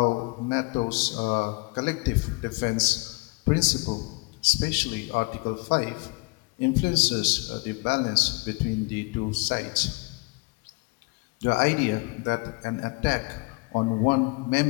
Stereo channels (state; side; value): quieter; right; 29.1 dB